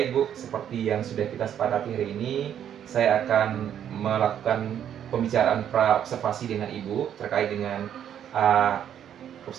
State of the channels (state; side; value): quieter; left; 9.7 dB